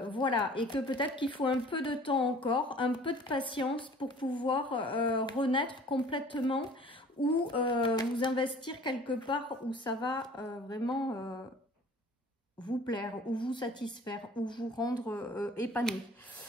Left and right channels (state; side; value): normal; both; correlation 0.49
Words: et que peut-être qu'il faut un peu de temps encore, un peu de patience pour pouvoir renaître complètement ou vous investir quelque part où ça va vraiment vous plaire, ou vous satisfaire, ou vous rendre épanoui.